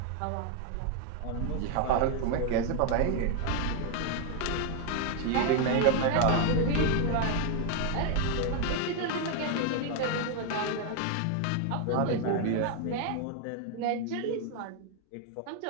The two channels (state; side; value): different; both; correlation 0.00